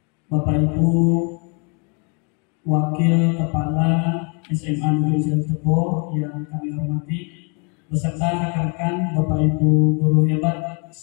Bapak Ibu Wakil Kepala SMA Negeri 1 Tebo yang kami hormati, beserta rekan-rekan Bapak Ibu guru hebat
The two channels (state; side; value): quieter; right; 36.0 dB